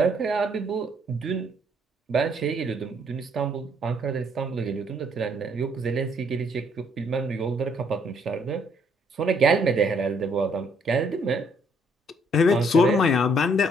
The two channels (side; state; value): both; normal; correlation 0.67